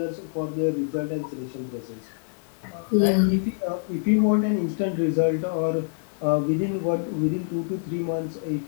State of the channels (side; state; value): right; silent; digital silence